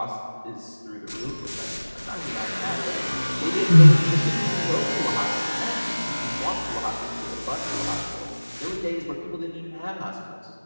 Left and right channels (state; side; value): inverted; both; correlation -1.00